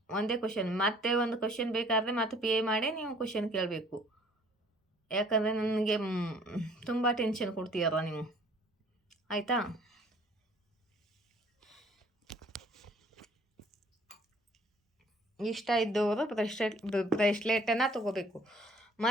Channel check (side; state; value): both; normal; correlation 0.56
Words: ಒಂದೇ ಕ್ವಶನ್, ಮತ್ತೆ ಒಂದು ಕ್ವಶನ್ ಬೇಕಾದರೆ ಮತ್ತೆ ಪೇ ಮಾಡಿ ನೀವು ಕ್ವಶನ್ ಕೇಳಬೇಕು. ಯಾಕಂದರೆ ನನಗೆ ತುಂಬ ಟೆನ್ಷನ್ ಕೊಡ್ತೀರ ನೀವು, ಆಯಿತಾ? ಇಷ್ಟ ಇದ್ದವರು ಬ್ರೇಸ್ಲೆಟನ್ನು ತಗೋಬೇಕು.